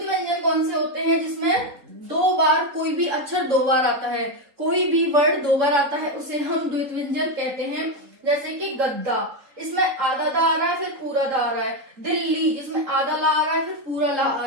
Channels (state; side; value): late; left; 3.8 ms